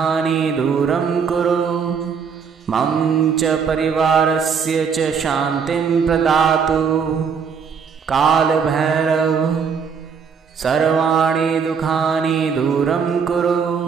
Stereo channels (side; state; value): left; quieter; 6.3 dB